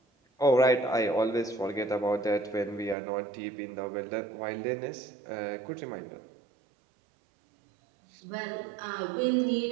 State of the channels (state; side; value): drops out; left; at 3.0 s